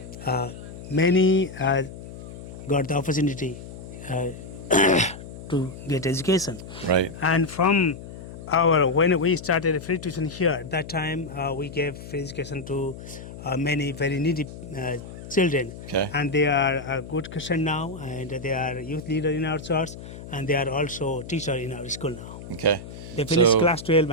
many got the opportunity to get education. Right. And from when we started free tuition here, that time we gave free education to many very needy children. Okay. And they are a good Christian now, and they are youth leader in our church, and they are also teacher in our school now. Okay. They finished So- class 12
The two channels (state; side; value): noise; left; hum, 13 dB below the sound